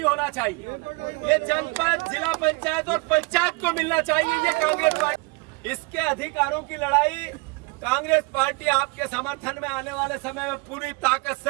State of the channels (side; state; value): left; quieter; 27.7 dB